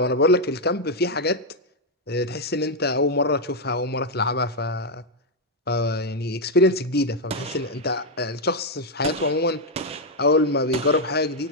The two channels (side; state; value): both; normal; correlation 0.01